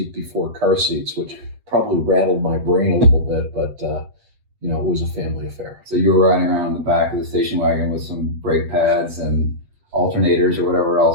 before car seats, which probably rattled my brain a little bit, but it was a family affair. So you were riding around in the back of the station wagon with some brake pads and alternators or whatever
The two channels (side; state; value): left; late; 7.8 ms